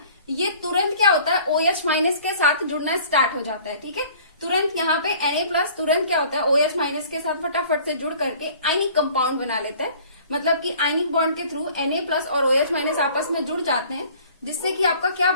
ये तुरंत क्या होता है, OH माइनस के साथ जुड़ना स्टार्ट हो जाता है। ठीक है, तुरंत यहाँ पे Na+ तुरंत क्या होता है, OH माइनस के साथ फटाफट से जुड़ करके आयनिक कंपाउंड बना लेता है। मतलब कि आयनिक बॉन्ड के थ्रू Na+ और OH माइनस आपस में जुड़ जाते हैं, जिससे कि आपका क्या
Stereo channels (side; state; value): both; inverted; correlation -0.50